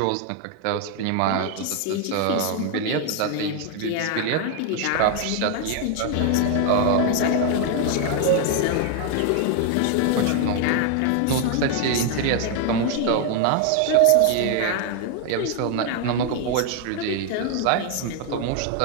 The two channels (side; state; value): both; different; correlation 0.01